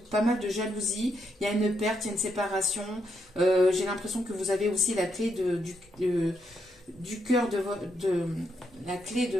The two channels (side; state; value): both; normal; correlation 0.79